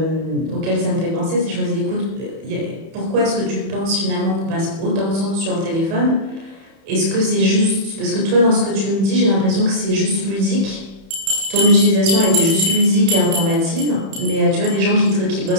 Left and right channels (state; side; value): late; left; 31 ms